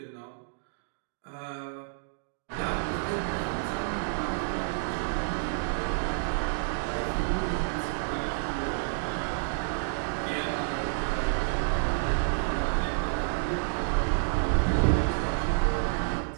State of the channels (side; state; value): left; silent; digital silence